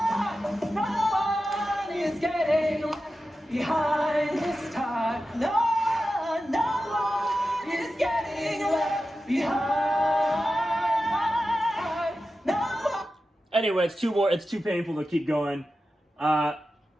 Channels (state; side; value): normal; both; correlation 0.92